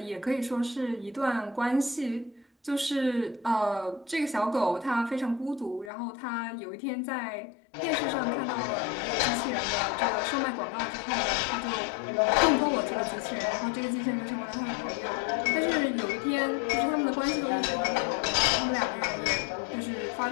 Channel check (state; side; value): drops out; right; at 5.9 s